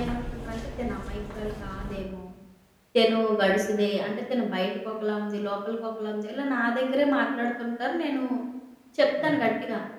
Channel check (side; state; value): both; identical; correlation 1.00